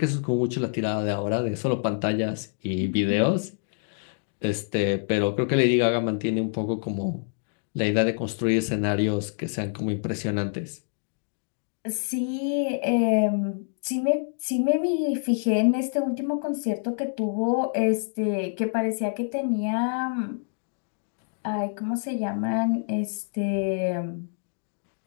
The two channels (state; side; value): silent; right; digital silence